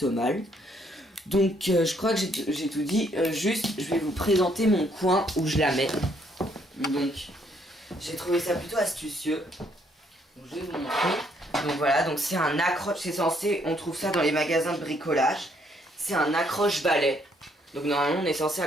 mal. Donc je crois que j'ai tout dit. Juste, je vais vous présenter mon coin où je la mets. Donc j'ai trouvé ça plutôt astucieux. Donc, je vais vous montrer. Donc voilà, donc c'est un accroche, c'est censé, on trouve ça dans les magasins de bricolage. C'est un accroche-balai. Donc normalement on est censé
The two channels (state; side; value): normal; both; correlation 0.69